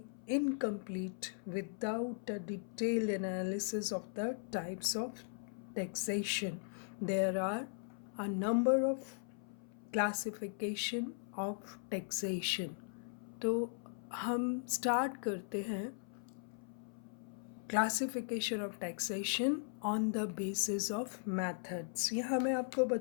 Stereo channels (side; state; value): right; silent; 52 dB below the other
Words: incomplete without a detailed analysis of the types of taxation. There are a number of classification of taxation. तो हम start करते हैं classification of taxation on the basis of methods. यहाँ मैं आपको